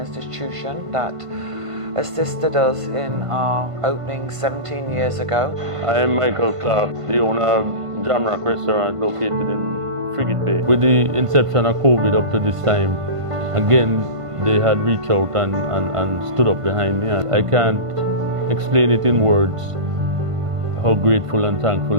that assisted us in our opening 17 years ago. I am Michael Clark, the owner of Jamrock Restaurant located in Frigate Bay. With the inception of COVID up to this time, again, they had reached out and stood up behind me. I can't explain it in words how grateful and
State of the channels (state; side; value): late; left; 1.5 ms